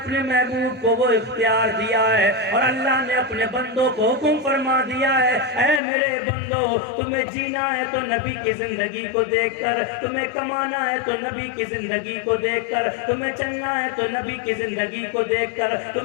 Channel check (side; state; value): right; drops out; at 5.8 s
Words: محبوب کو وہ اختیار دیا ہے اور اللہ نے اپنے بندوں کو حکم فرما دیا ہے، اے میرے بندو، تمہیں جینا ہے تو نبی کی زندگی کو دیکھ کر، تمہیں کمانا ہے تو نبی کی زندگی کو دیکھ کر، تمہیں چلنا ہے تو نبی کی زندگی کو دیکھ کر،